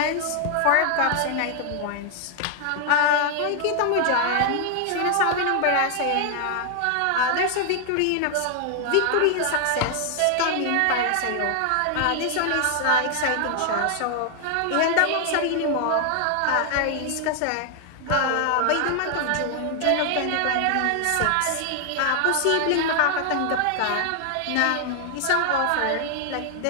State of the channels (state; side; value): different; both; correlation 0.00